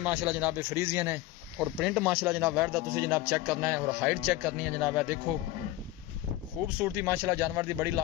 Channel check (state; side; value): quieter; right; 16.0 dB